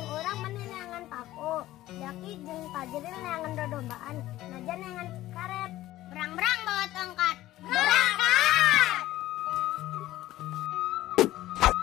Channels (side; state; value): right; quieter; 15.5 dB